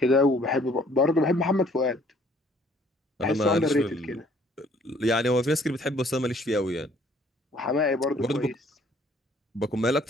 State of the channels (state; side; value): normal; both; correlation 0.59